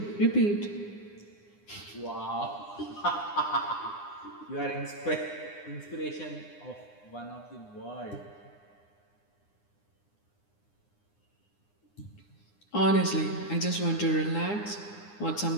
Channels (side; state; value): right; late; 9.8 ms